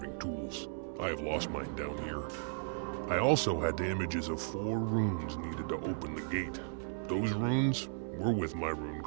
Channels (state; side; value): silent; left; 54 dB below the other